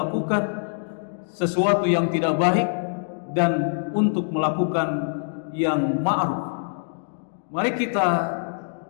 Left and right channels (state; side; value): silent; right; digital silence